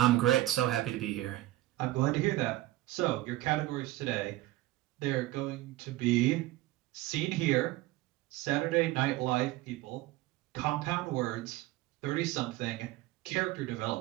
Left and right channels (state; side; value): quieter; left; 16.9 dB